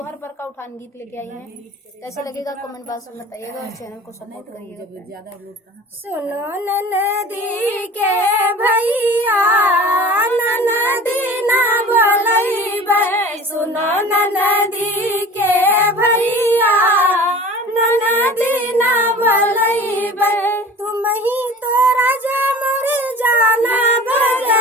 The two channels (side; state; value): both; normal; correlation 0.41